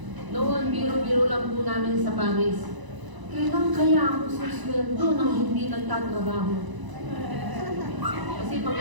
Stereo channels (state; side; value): late; left; 1.0 ms